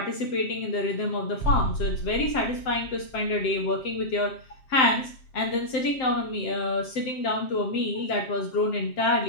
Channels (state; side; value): late; right; 7.7 ms